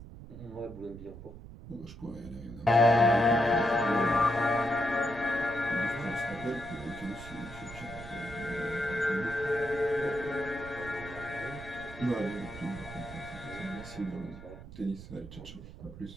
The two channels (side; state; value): right; noise; rumble, 14 dB below the sound